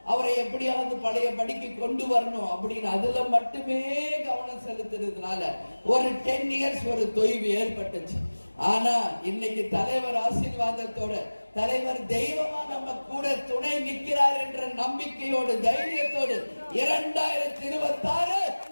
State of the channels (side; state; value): both; inverted; correlation -1.00